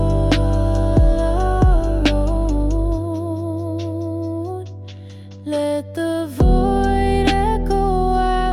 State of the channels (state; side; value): identical; both; correlation 1.00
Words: our own. Let the void echo